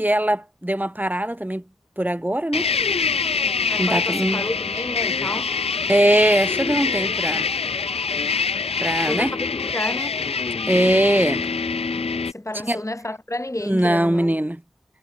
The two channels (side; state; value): both; normal; correlation 0.66